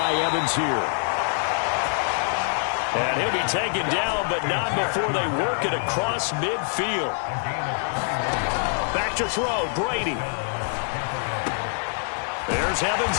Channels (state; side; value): silent; right; digital silence